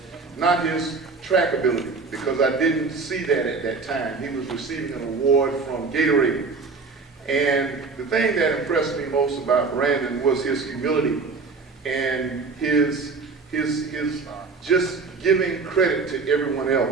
not his track ability, because I didn't see that at that time. He was receiving an award from Gatorade. And the thing that impressed me most about Brandon was his humility and his just giving credit to everyone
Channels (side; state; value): left; quieter; 4.4 dB